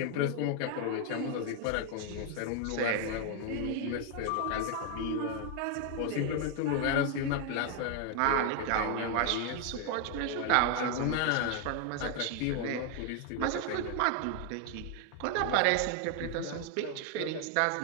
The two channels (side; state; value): both; different; correlation 0.00